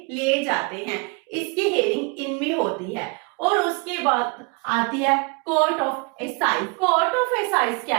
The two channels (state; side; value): quieter; left; 31.9 dB